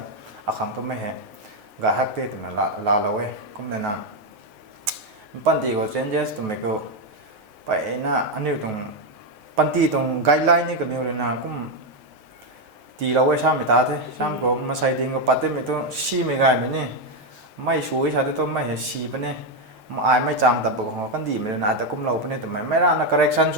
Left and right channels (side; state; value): left; late; 6.5 ms